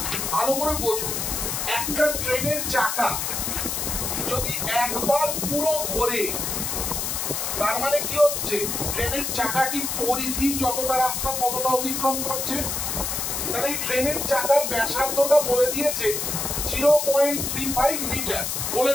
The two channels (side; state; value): left; noise; hiss, 2 dB below the sound